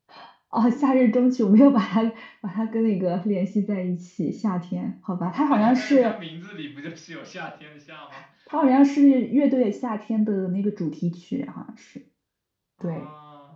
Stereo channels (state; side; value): identical; both; correlation 1.00